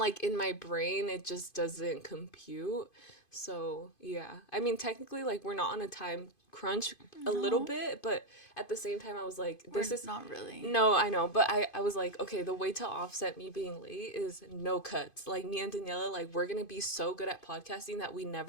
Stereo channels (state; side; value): late; right; 2.5 ms